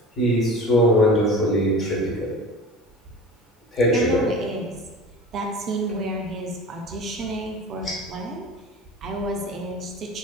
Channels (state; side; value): normal; both; correlation 0.37